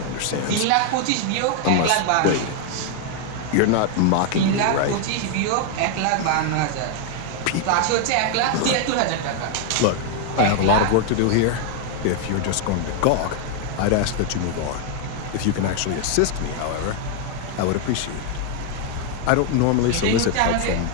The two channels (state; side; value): different; both; correlation 0.00